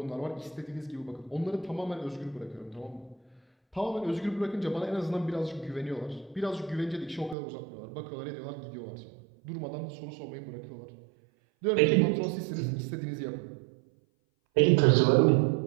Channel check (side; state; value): left; drops out; at 7.4 s